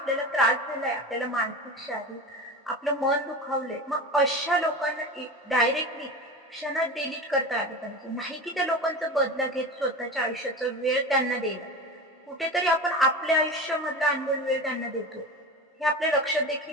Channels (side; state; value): both; normal; correlation 0.28